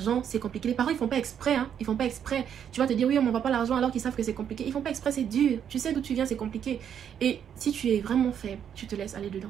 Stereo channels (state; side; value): quieter; left; 8.7 dB